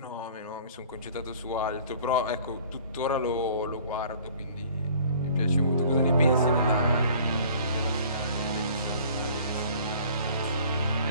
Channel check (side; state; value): both; inverted; correlation -0.51